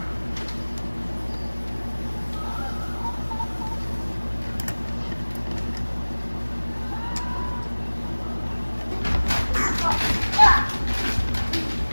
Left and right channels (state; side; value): inverted; both; correlation -1.00